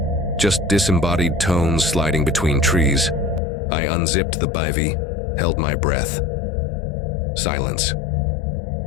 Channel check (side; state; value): right; drops out; at 3.4 s